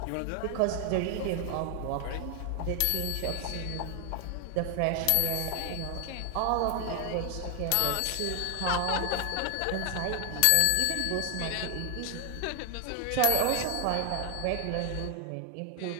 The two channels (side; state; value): both; different; correlation 0.00